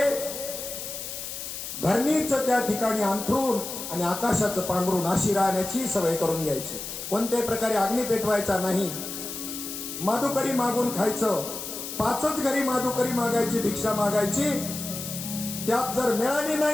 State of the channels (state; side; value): noise; left; hiss, 7 dB below the sound